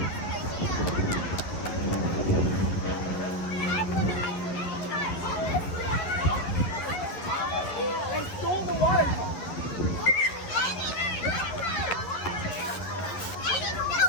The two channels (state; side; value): late; right; 11 ms